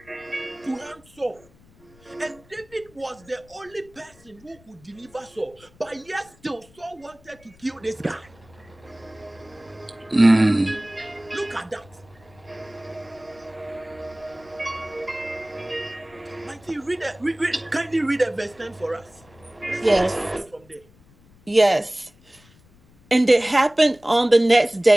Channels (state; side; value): noise; left; rumble, 28 dB below the sound